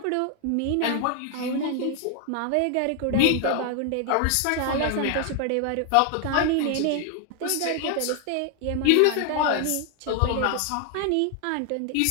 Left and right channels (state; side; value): different; both; correlation 0.00